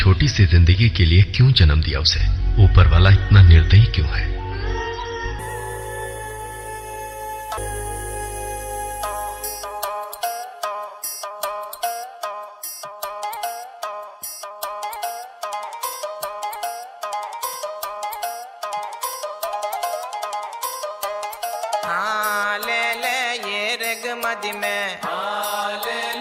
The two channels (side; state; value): both; identical; correlation 1.00